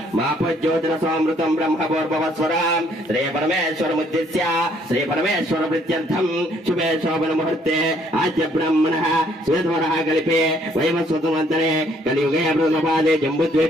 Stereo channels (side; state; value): both; normal; correlation 0.65